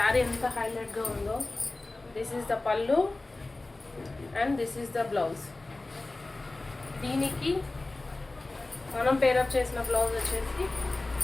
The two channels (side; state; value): right; quieter; 3.1 dB